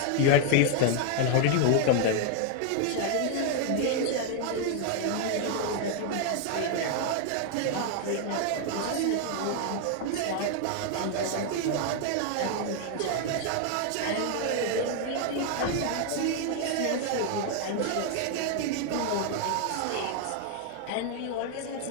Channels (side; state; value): both; different; correlation 0.00